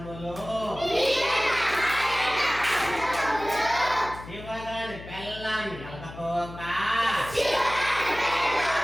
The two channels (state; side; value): noise; left; hum, 14 dB below the sound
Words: శివగాని పెళ్ళాన్ని ఎలకపోక,